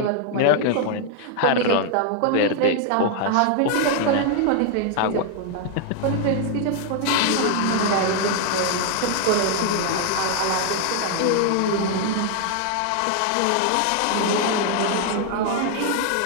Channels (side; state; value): both; different; correlation 0.00